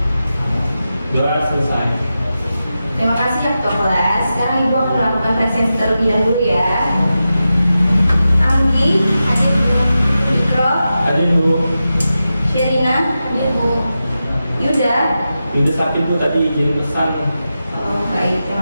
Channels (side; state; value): both; inverted; correlation -0.91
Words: Doa selesai. Terima kasih ya ketua kelas. Sekarang ibu akan melakukan presensi terlebih dahulu ya. Anggi, hadir bu. Ikro, Hadir Bu. Sherina, hadir bu. Yuda. Yuda sakit Bu, tadi izin pesan. Oh, baik,